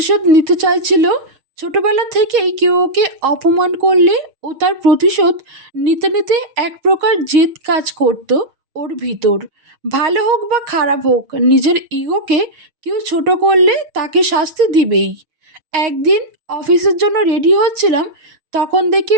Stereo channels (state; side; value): late; left; 6.4 ms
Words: নিতে চাইছিল। ছোটবেলা থেকেই কেউ ওকে অপমান করলে ও তার প্রতিশোধ নিতে নিতে এক প্রকার জেদ কাজ করত ওর ভিতর। ভালো হোক বা খারাপ হোক, নিজের ইগোকে কেউ ছোট করলে তাকে শাস্তি দিবেই। একদিন অফিসের জন্য রেডি হচ্ছিলাম, তখন দেখি